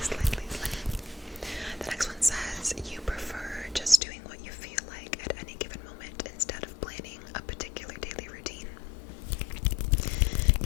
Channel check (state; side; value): drops out; right; at 4.0 s